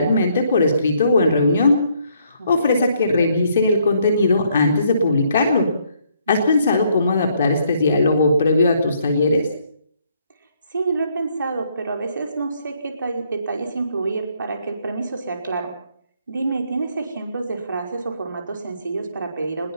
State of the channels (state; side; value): inverted; both; correlation -0.70